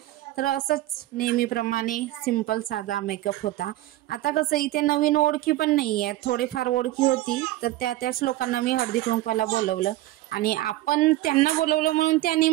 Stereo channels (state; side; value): quieter; left; 16.2 dB